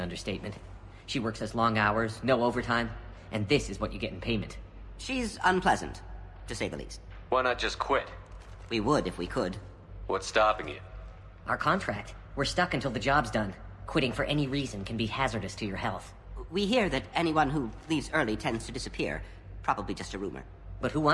understatement. She works as long hours, no overtime, and this is what you get in payment. She's unpleasant, to say the least. Why not just quit? We would if we could. What's stopping you? Our contract. We're stuck until the job's done. Quitting for any reason can be hazardous to your health. We hear that anyone who leaves early tends to disappear. Probably just a rumor. But who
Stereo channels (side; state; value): both; identical; correlation 1.00